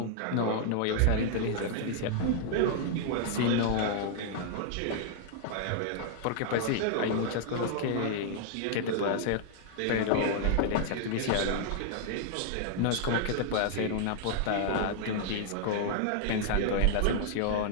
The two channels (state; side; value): different; both; correlation -0.01